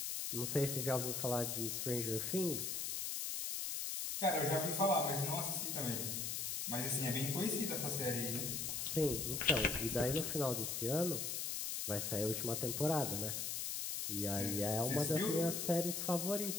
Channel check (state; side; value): noise; left; hiss, 2 dB below the sound